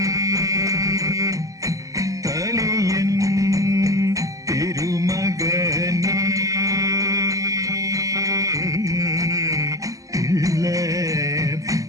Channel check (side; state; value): left; late; 0.16 ms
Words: തലയൻ തിരുമകനേ ഇല്ല